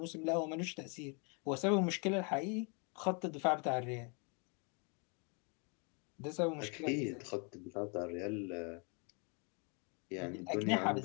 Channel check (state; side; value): quieter; right; 35.0 dB